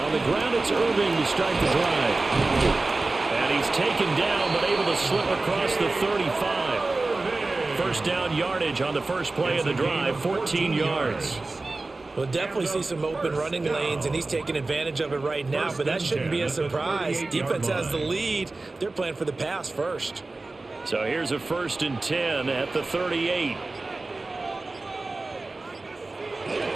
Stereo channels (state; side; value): quieter; left; 3.3 dB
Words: the ground, it's Irving to start the drive. And he's taken down, but able to slip across the 35. First down yardage on the first play of the drive, 14 yards. We'll definitely see some open running lanes, and he's taking advantage of it right now, but that shouldn't be a surprise. Defense has the lead. They're playing for the pass first. So here's a 1st and 10 at the 38.